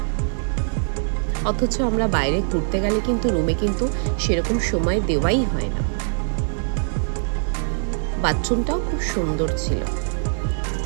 অথচ আমরা বাইরে ঘুরতে গেলে কিন্তু রুমে কিন্তু সেরকম সময় দেওয়াই হয় না। বাথরুমটাও খুব সুন্দর ছিল।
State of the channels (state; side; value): silent; left; 64 dB below the other